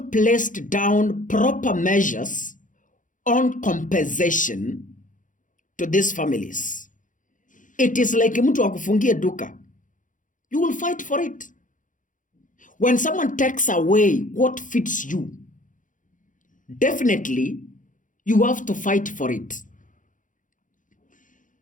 placed down proper measures on compensation to these families. It is like mtu akufungie duka. You will fight for it. When someone takes away what fits you, definitely you have to fight for it.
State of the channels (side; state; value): right; late; 0.38 ms